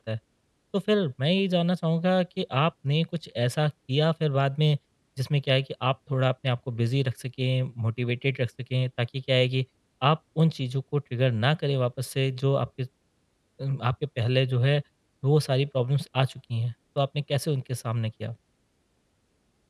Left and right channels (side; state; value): both; identical; correlation 1.00